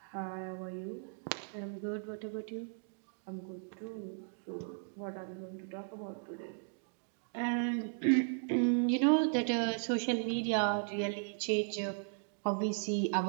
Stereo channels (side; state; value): left; silent; digital silence